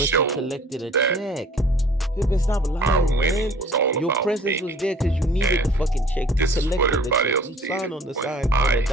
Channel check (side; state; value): both; normal; correlation 0.50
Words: show you collected a that check. Pippen, stop lying, man. winning was all Your about presence me. was there because you needed the fucking check. You This is what collected the everybody check. else You did signed on the when sign on the